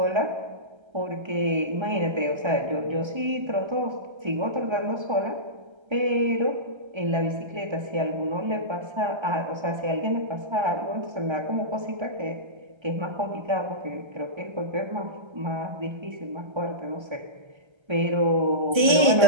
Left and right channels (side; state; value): left; late; 1.3 ms